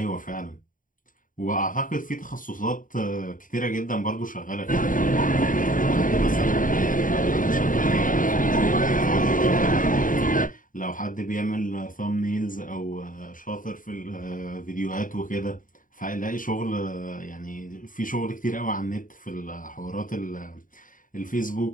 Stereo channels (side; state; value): right; late; 0.39 ms